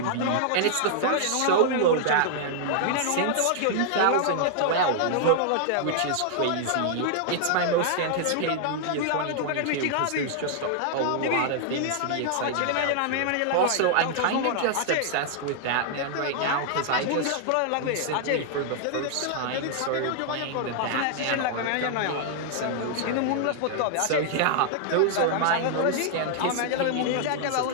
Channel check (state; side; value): different; both; correlation -0.01